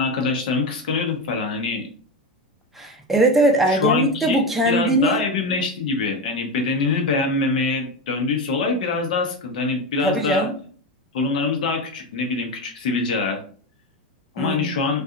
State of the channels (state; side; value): normal; both; correlation 0.17